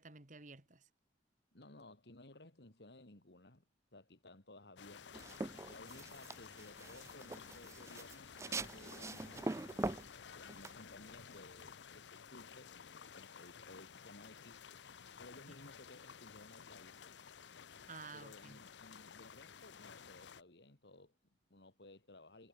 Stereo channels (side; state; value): both; normal; correlation 0.39